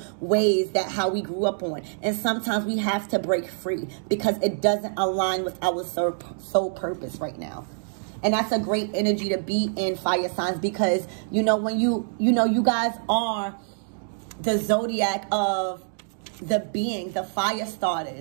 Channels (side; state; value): left; silent; digital silence